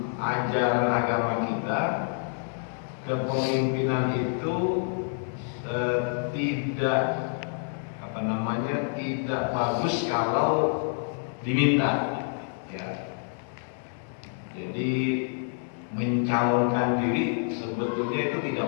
ajaran agama kita kepemimpinan itu tidak bagus kalau diminta. Jadi mencalonkan diri sebetulnya itu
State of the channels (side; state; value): right; silent; 60 dB below the other